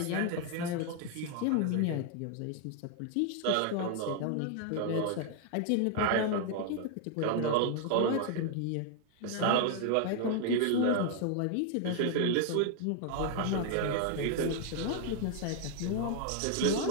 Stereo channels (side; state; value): both; different; correlation 0.00